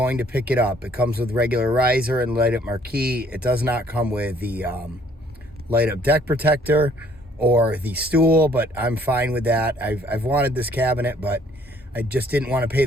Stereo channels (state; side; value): normal; both; correlation 0.61